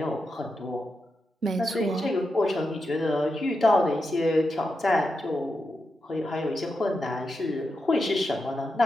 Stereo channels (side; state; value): both; normal; correlation 0.87